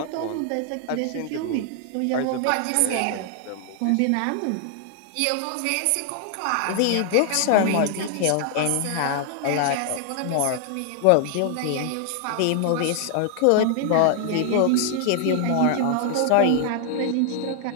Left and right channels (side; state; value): both; different; correlation 0.00